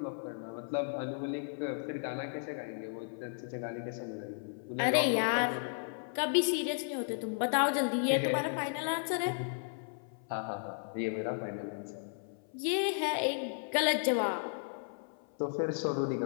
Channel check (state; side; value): silent; right; 55 dB below the other